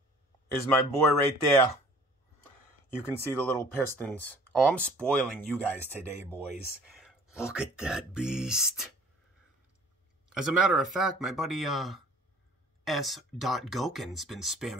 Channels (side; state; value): both; normal; correlation 0.51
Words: is my boy right there. You can see the little pistons. Oh, I'm spoiling you guys today, boys. Look at that beast. As a matter of fact, my buddy S. Goken's been